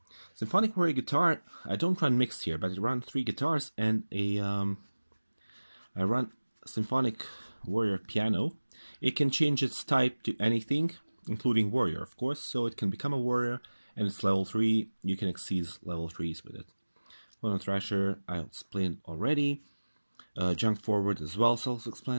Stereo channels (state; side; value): inverted; both; correlation -1.00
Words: Symphonic Warrior Guitaar, I don't run mixed here, but I run 3 guitars and I run Symphonic Warrior Piano. It can change its type to anything, including Warrior, of course, so it can become a Warrior, and it's level 3, you can exceed level 3s with it. Photon Thrasher, I explained already. Junk Forward as well,